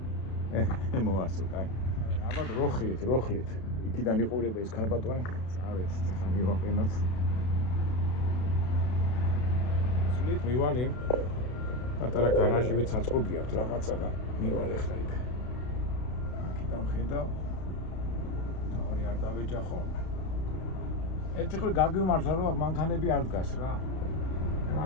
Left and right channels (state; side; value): late; right; 32 ms